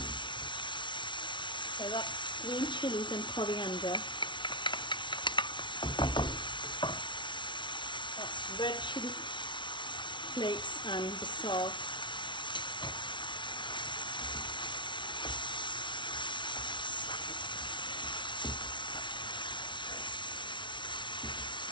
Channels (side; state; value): right; late; 0.23 ms